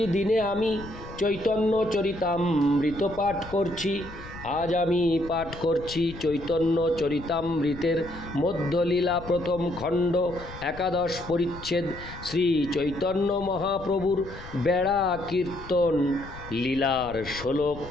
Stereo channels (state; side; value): noise; left; rumble, 15 dB below the sound